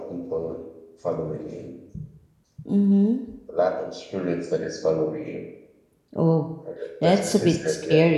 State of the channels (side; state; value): both; identical; correlation 1.00